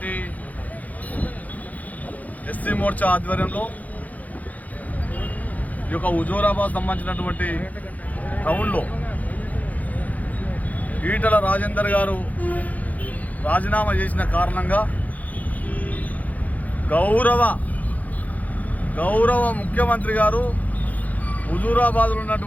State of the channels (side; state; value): right; late; 0.077 ms